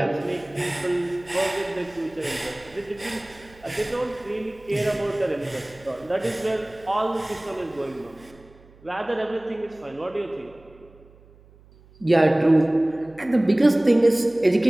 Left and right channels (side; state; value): right; noise; hum, 26 dB below the sound